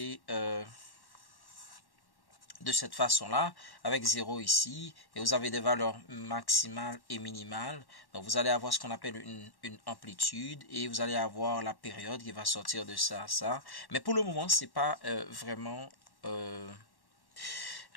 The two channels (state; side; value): late; right; 1.1 ms